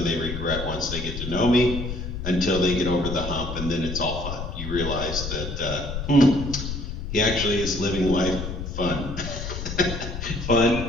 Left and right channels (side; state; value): left; noise; rumble, 6 dB below the sound